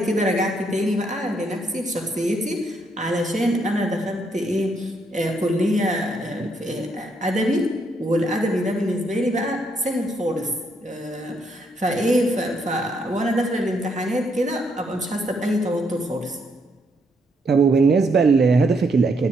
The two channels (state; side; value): normal; both; correlation 0.74